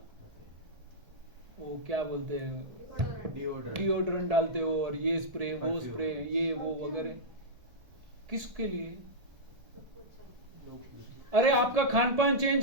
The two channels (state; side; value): late; left; 1.8 ms